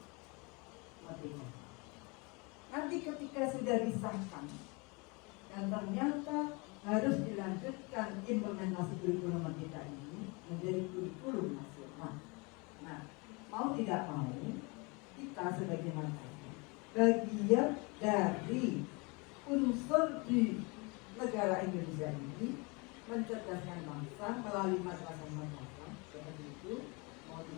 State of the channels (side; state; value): right; quieter; 29.1 dB